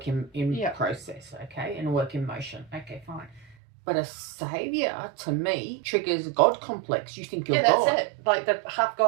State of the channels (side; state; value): left; drops out; at 3.6 s